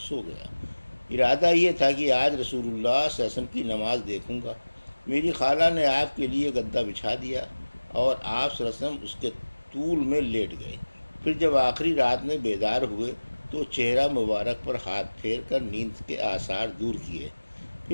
گیا۔ ارادہ یہ تھا کہ آج رسول اللہ صلی اللہ علیہ وسلم کی نماز دیکھوں گا۔ میری خالہ نے آپ کے لیے گدا بچھا دیا اور آپ صلی اللہ علیہ وسلم اس کے طول میں لیٹ گئے۔ پھر جب آخری رات میں بیدار ہوئے تو چہرہ مبارک پر ہاتھ پھیر کر نیند کے آثار دور کیے،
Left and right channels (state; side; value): inverted; both; correlation -1.00